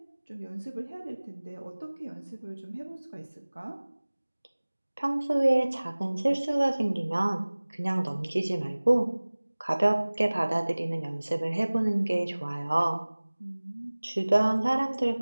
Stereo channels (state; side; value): inverted; both; correlation -1.00